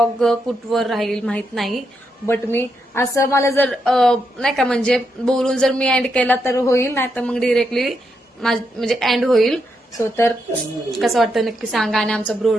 कुठवर राहील माहित नाही, बट मी असं मला जर नाही का म्हणजे बोलून जर मी एंड केला तर होईल, नाही तर मग डिरेक्टली म्हणजे एंड होईल. सो तर कसं वाटतं नक्की सांगा. आणि आमचा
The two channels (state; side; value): normal; both; correlation 0.82